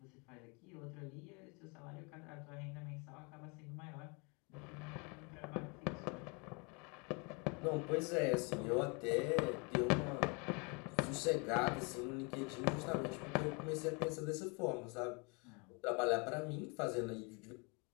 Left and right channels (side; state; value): right; quieter; 31.7 dB